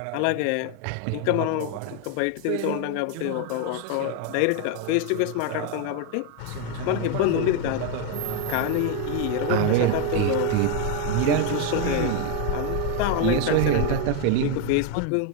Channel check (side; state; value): both; different; correlation 0.01